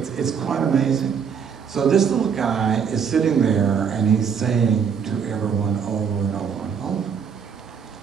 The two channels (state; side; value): quieter; left; 6.8 dB